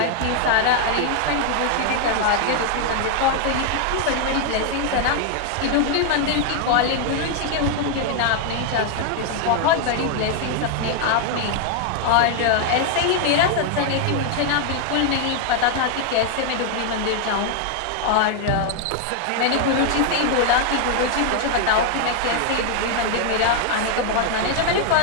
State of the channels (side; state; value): both; different; correlation 0.00